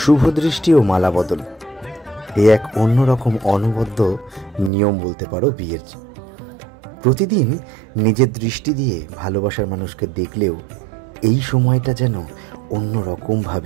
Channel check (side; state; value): left; drops out; at 4.7 s